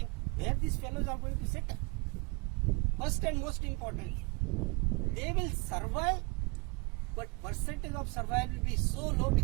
where these fellows are going to settle? First and most importantly, they will survive, but percentage of survival will be so low,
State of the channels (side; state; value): left; quieter; 29.5 dB